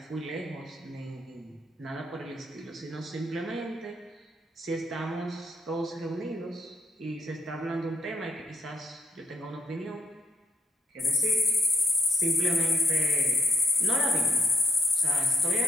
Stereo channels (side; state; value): both; normal; correlation 0.70